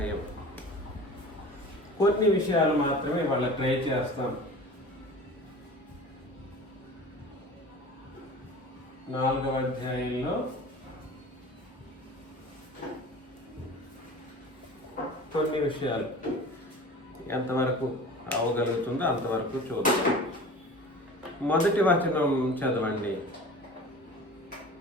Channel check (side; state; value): both; normal; correlation 0.39